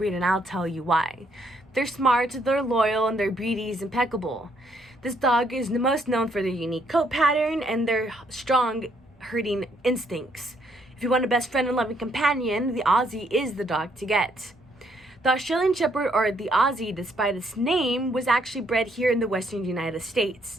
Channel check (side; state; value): both; normal; correlation 0.70